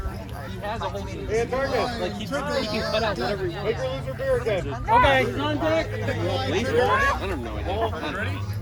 Hey, Antarctica. Like he can cut out whatever he wants. Make her lose her beer again. Okay, on deck. Laser? I don't have no idea.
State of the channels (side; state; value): both; identical; correlation 1.00